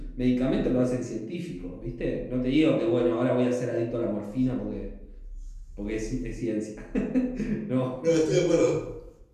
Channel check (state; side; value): identical; both; correlation 1.00